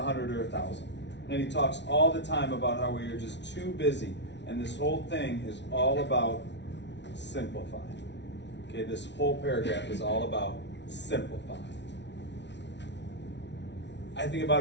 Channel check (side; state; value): right; late; 0.51 ms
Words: or 1,000. And he talks all the time about how we are just too busy. And this whole thing is all about simplifying. Okay, this whole paragraph is all about simplifying. I think